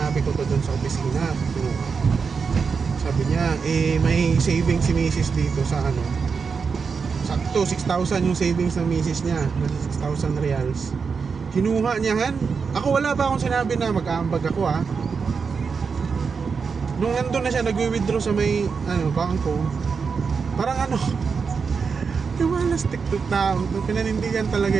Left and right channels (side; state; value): left; quieter; 5.5 dB